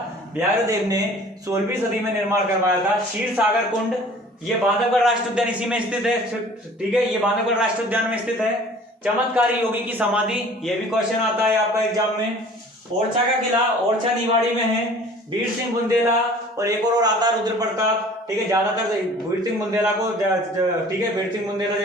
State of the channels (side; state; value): both; normal; correlation 0.48